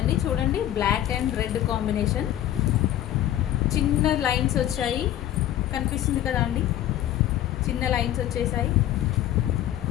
చూడండి, బ్లాక్ అండ్ రెడ్ కాంబినేషన్, చిన్న లైన్స్ వచ్చాయి, కనిపిస్తుంది కదా అండి, చిన్న లైన్స్ వచ్చేసాయి.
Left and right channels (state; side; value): quieter; right; 12.6 dB